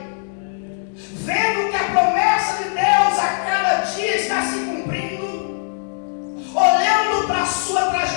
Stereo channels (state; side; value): silent; right; digital silence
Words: vendo que a promessa de Deus a cada dia está se cumprindo, olhando para a sua